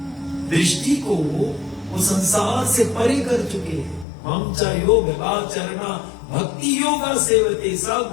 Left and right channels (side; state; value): right; drops out; at 4.0 s